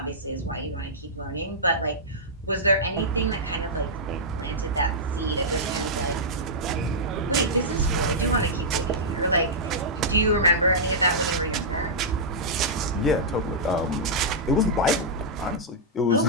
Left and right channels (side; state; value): both; normal; correlation -0.11